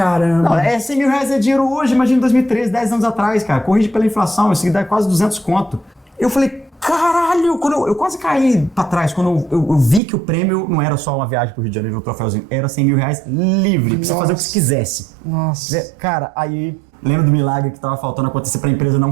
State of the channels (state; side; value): drops out; left; at 10.0 s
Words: Não, 100 mil reais é dinheiro hoje, imagina 2013, 10 anos atrás, cara. Corrige pela inflação, isso dá quase 200 conto. Eu falei, caralho, eu quase caí pra trás quando eu vi que o prêmio não era só uma viagem pro Rio de Janeiro, o troféuzinho, era 100 mil reais livre, pra você fazer o que você quisesse. Nossa. Cara, aí, lembra do milagre que tava faltando acontecer pra empresa não